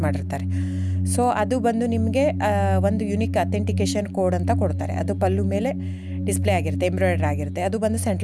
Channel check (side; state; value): both; identical; correlation 1.00